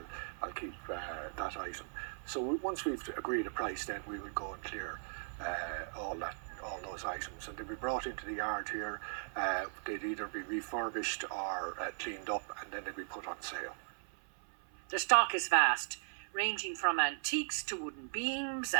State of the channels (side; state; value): left; silent; 52 dB below the other